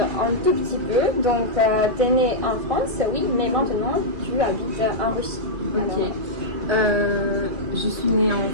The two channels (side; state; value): left; late; 2.5 ms